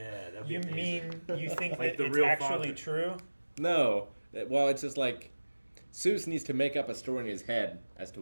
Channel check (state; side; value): inverted; both; correlation -1.00